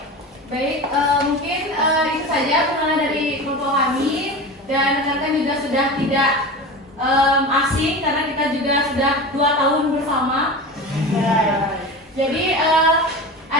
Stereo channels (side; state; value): both; normal; correlation 0.29